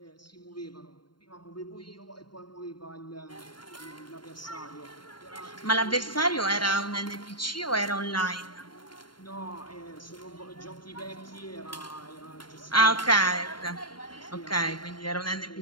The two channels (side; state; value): right; late; 0.72 ms